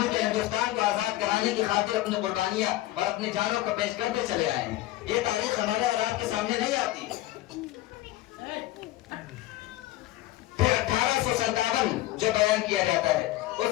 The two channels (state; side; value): quieter; right; 16.2 dB